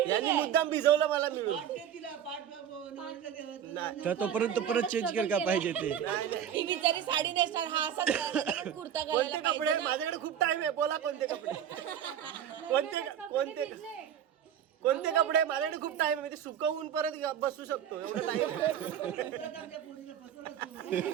यांनी मुद्दाम भिजवलं मला मिळून. तर तोपर्यंत परत चेंज कर का पाहिजे ते. ही बिचारी साडी नेसणार, हा असा कुर्ता कोणते घालायला कपडे? माझ्याकडे खूप टाइम आहे, बोला कोणते कपडे? कोणते कोणते कपडे? माझ्याकडे खूप टाइम आहे, मी ते सुकवून परत बसू शकतो एवढं टाइम.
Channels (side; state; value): left; quieter; 9.4 dB